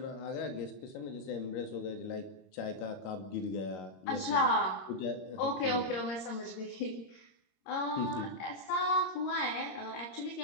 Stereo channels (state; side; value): late; right; 22 ms